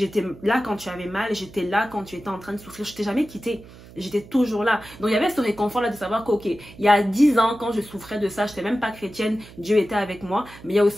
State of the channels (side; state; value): right; noise; hum, 19 dB below the sound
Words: là quand tu avais mal. J'étais là quand tu étais en train de souffrir. Je t'ai jamais quitté. J'étais toujours là. Donc, il y avait ce réconfort-là de savoir qu'ok, il y a 10 ans, quand je souffrais de ça, je n'étais même pas chrétienne, Dieu était avec moi. Mais il y a